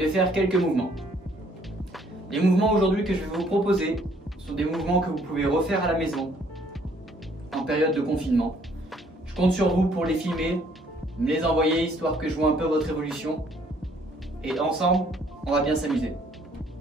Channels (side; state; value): both; normal; correlation 0.63